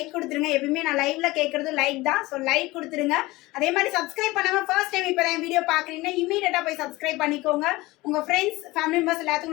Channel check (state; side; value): quieter; right; 20.3 dB